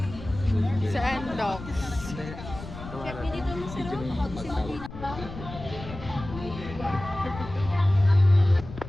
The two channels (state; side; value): noise; left; rumble, 12 dB below the sound